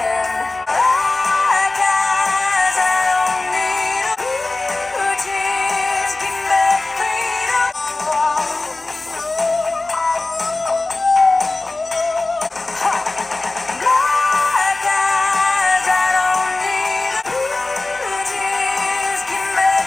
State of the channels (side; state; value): right; quieter; 3.2 dB